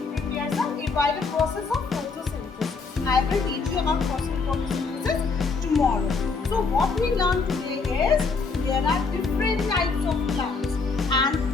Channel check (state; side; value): quieter; right; 4.5 dB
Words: prepares us by the process of photosynthesis. I will teach you about photosynthesis tomorrow. So what we learned today is there are different types of plants. And